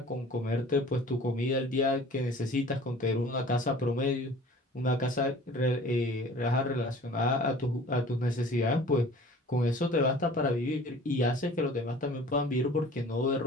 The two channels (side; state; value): both; normal; correlation 0.46